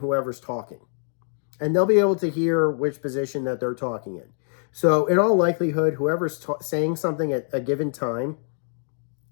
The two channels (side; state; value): right; silent; digital silence